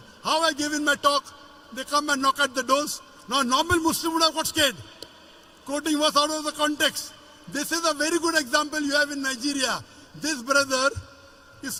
How I gave in my talk, they come and knock at the doors. Now normal Muslim would have got scared. Quoting verse out of the context. This is a very good example you have in Nigeria. This brother is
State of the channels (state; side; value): identical; both; correlation 1.00